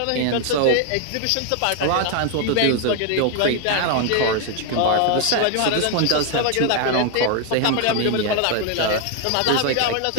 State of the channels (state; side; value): different; both; correlation 0.01